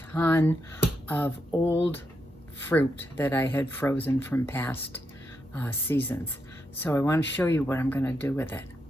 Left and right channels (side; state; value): both; normal; correlation 0.83